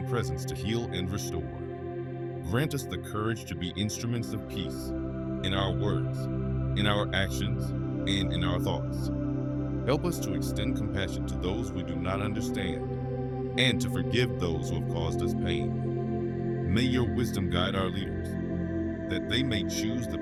presence to heal and restore. Grant us the courage to be instruments of peace in our words, in our actions, and in our thoughts. Help us to extend compassion to those we do not understand and to forgive those who have caused us pain. May your wisdom guide our leaders, that they may choose the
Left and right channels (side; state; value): both; identical; correlation 1.00